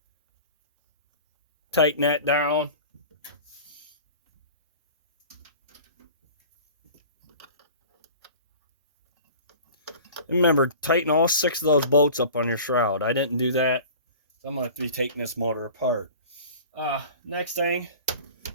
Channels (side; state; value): both; inverted; correlation -0.41